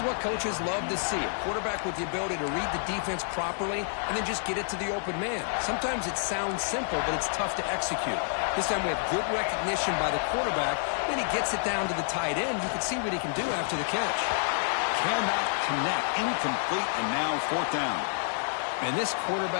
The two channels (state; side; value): silent; right; digital silence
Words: what coaches love to see. A quarterback with the ability to read the defense properly and then just get it to the open man. Sometimes it sounds simple, but it's tough to execute. This time we have good recognition by the quarterback. Then he gets it down to the tight end. You can see what he can do after the catch. Cannot connect. Incomplete, and now fourth down. And this